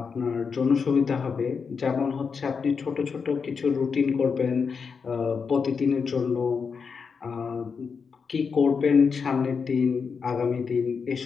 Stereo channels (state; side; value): quieter; right; 5.7 dB